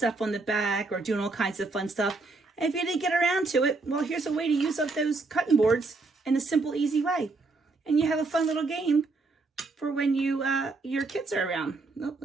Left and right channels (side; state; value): left; quieter; 3.6 dB